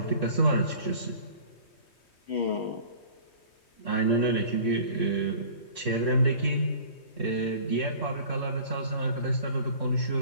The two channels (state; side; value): late; right; 3.2 ms